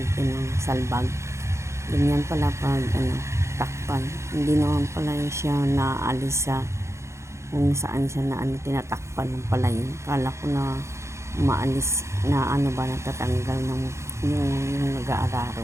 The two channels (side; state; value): left; late; 0.14 ms